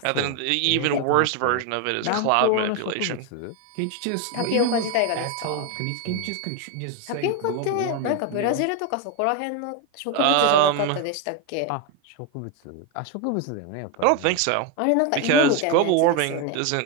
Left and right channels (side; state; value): both; different; correlation 0.01